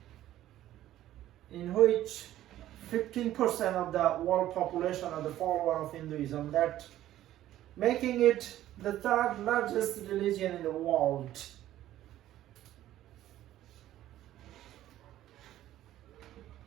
in which 15% of the world population are the follower of Hinduism, that making it the third largest religion in the world.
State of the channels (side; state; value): left; quieter; 13.4 dB